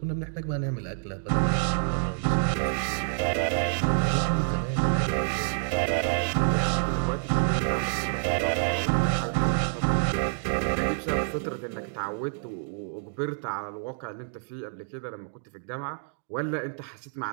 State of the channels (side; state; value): left; silent; digital silence